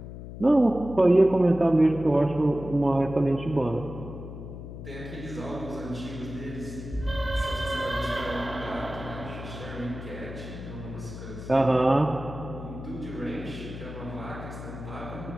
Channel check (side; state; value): left; noise; hum, 11 dB below the sound